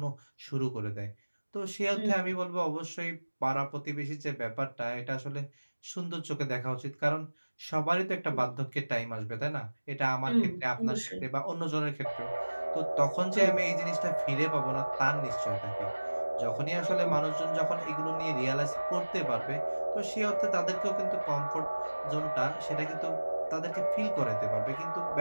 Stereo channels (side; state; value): both; inverted; correlation -1.00